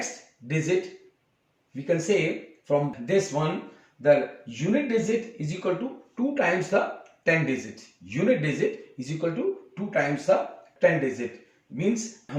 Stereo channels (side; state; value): both; identical; correlation 1.00